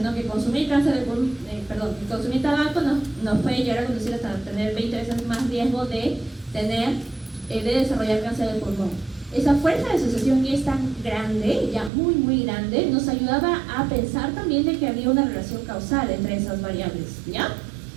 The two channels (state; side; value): drops out; left; at 11.9 s